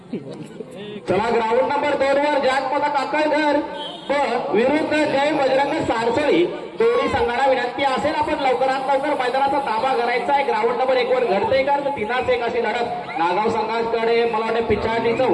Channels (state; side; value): identical; both; correlation 1.00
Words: चला ग्राउंड नंबर 2 वर जागपदा काकळघर विरुद्ध जय बजरंग सारसळी दोन्ही संघाला विनंती असेल आपण लवकरात लवकर मैदानाचा ताबा करायचा आहे. ग्राउंड नंबर 1 वर घडते का तर 3-1 अशी लढत नागाव संघाकडे मला वाटतं पिछाडीचं